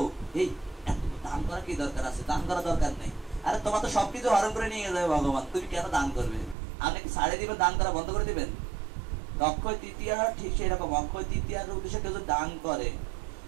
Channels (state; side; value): drops out; left; at 6.6 s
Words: এই দান করা কি দরকার আছে? দান করা দরকার নেই। আরে তোমার তো সবকিছু হরণ করে নিয়ে যাবে ভগবান, তুমি কেন দান করবে? আপনি কি ছাড়ে দিবেন, দান করা বন্ধ করে দিবেন? অক্ষয় তৃতীয়া ঠিক সেই রকম, অক্ষয় তৃতীয়ার উদ্দেশ্যে কেউ যদি দান করে